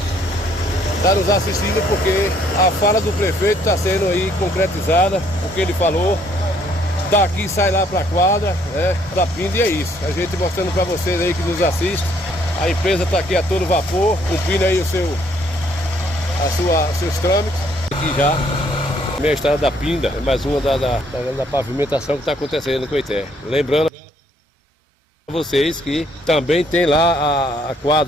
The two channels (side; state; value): both; normal; correlation 0.65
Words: estar nos assistindo, porque a fala do prefeito está sendo aí concretizada, o que ele falou. Daqui sai lá para a quadra, da Pinda, e é isso. A gente mostrando para vocês aí que nos assistem. A empresa está aqui a todo vapor, cumprindo aí seus trâmites. Aqui já, minha estrada da Pinda, é mais uma da pavimentação que está acontecendo no Coité. Lembrando a vocês que também tem lá a